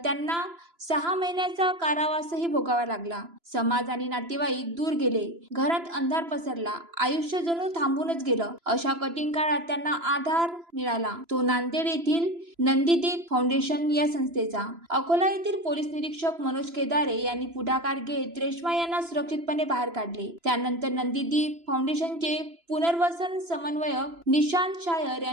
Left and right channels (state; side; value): late; left; 3.0 ms